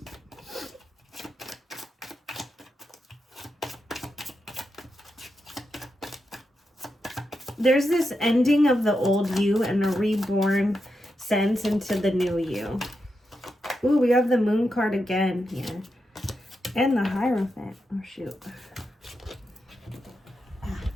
There's this ending of the old you and a reborn sense into the new you. Ooh, we have the moon card again here. And the Hierophant. Oh, shoot.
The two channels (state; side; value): normal; both; correlation 0.86